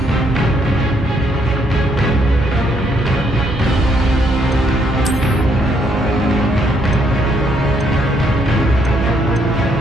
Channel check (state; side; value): normal; both; correlation 0.72